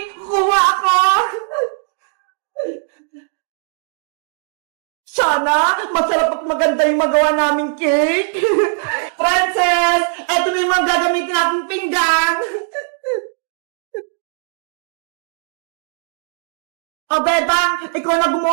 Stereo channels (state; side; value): silent; left; 67 dB below the other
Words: Kuha ako! Sana, masarap at maganda yung magawa naming cake! Princess! Eto na yung mga gagamitin natin pinggan! O, Bebang, ikaw na